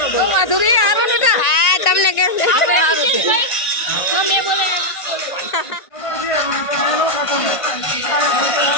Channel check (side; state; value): right; late; 1.5 ms